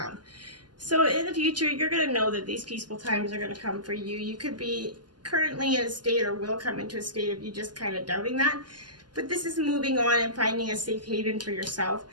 So in the future, you're going to know that these peaceful times are going to come for you. You could be currently in a state or will come into a state of you just kind of doubting that. But this is moving on and finding a safe haven for yourself.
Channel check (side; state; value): left; late; 0.70 ms